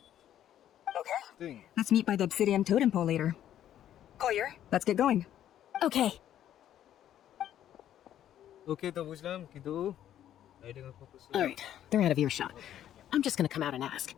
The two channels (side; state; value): right; quieter; 11.2 dB